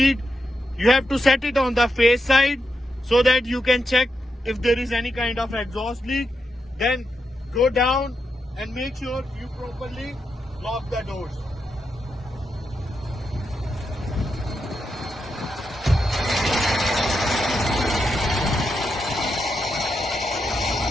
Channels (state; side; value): normal; both; correlation 0.85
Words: You have to set it on the face side so that you can check if there is any kind of exhaust leak. Then go down and make sure you properly lock the doors.